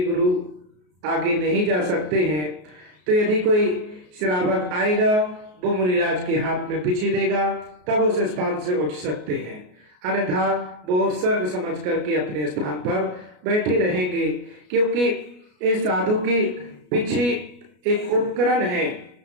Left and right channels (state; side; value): late; left; 33 ms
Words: गुरु आगे नहीं जा सकते हैं। तो यदि कोई श्रावक आएगा वो मुनिराज के हाथ में पिच्छी देगा, तब उस स्थान से उठ सकते हैं, अन्यथा वो उपसर्ग समझ करके अपने स्थान पर बैठे रहेंगे। क्योंकि इस साधु की पिच्छी एक उपकरण है,